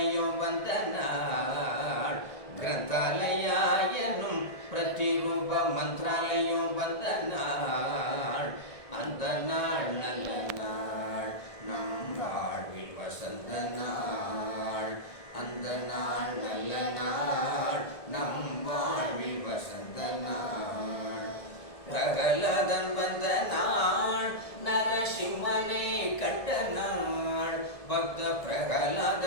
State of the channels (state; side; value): late; right; 1.7 ms